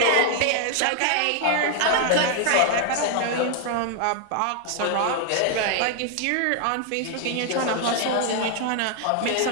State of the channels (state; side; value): different; both; correlation 0.00